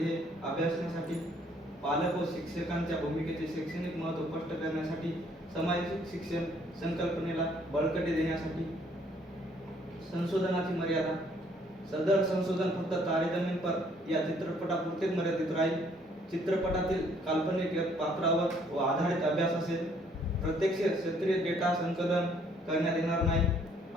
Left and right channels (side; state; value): both; normal; correlation 0.64